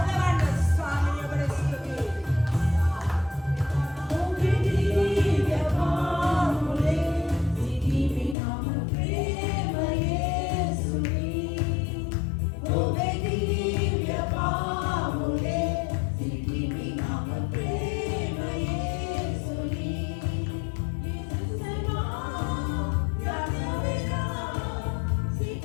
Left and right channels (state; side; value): drops out; right; at 8.3 s